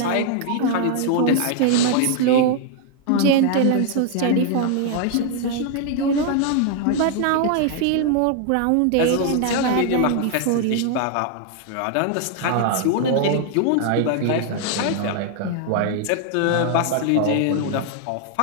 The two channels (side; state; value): both; different; correlation 0.00